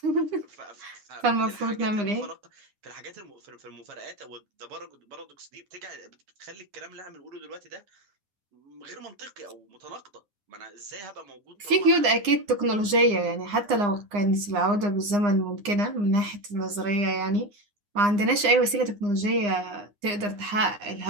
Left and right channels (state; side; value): late; left; 9.8 ms